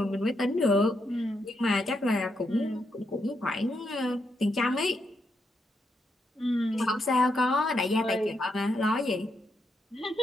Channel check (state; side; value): normal; both; correlation 0.80